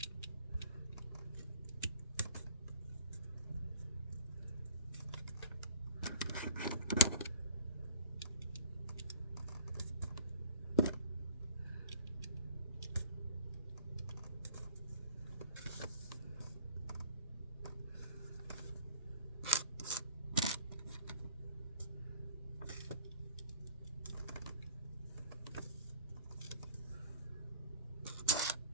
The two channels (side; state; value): both; inverted; correlation -0.45